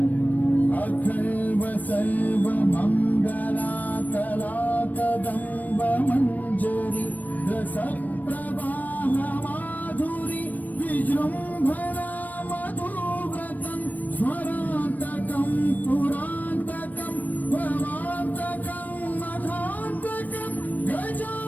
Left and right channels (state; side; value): late; right; 0.081 ms